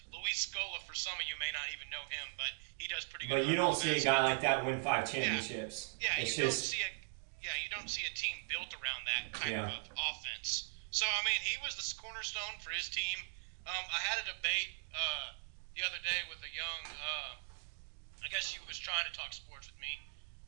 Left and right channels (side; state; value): left; silent; 52 dB below the other